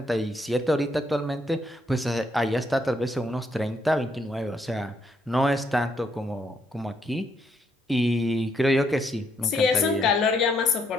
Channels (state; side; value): normal; both; correlation 0.73